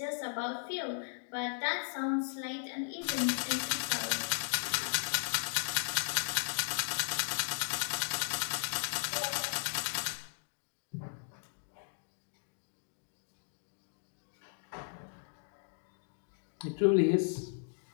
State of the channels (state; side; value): silent; right; digital silence